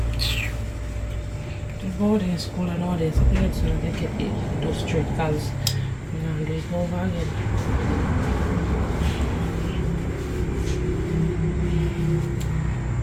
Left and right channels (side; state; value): both; identical; correlation 1.00